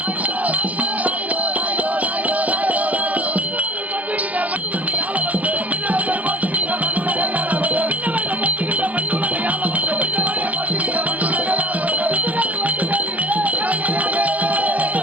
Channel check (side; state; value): left; late; 0.073 ms